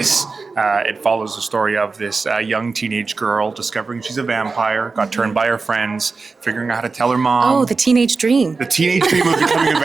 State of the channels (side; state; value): left; quieter; 4.2 dB